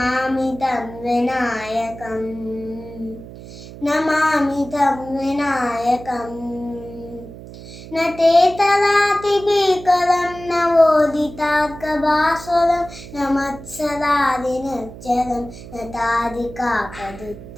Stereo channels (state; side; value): noise; right; hum, 15 dB below the sound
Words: तं विनायकम् नमामि तं विनायकम् न ते तदातिभीकरं नवोदितार्कभास्वरं न मत्सरादिनिर्जरं न